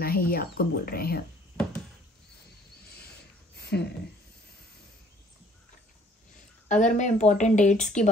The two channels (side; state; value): both; normal; correlation 0.57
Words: है, ये आपको बोल रहे हैं। अगर मैं इंपॉर्टेंट डेट्स की